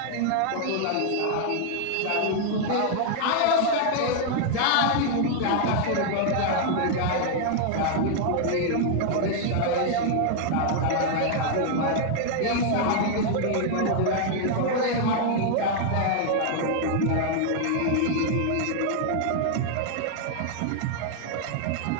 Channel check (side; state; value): both; different; correlation 0.00